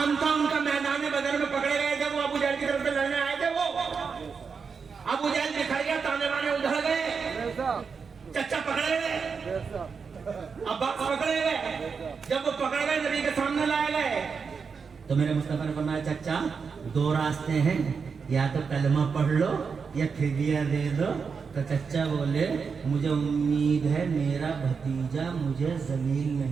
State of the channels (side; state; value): left; quieter; 5.6 dB